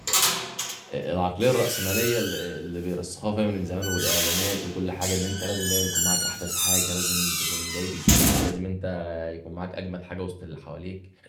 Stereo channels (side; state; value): both; identical; correlation 1.00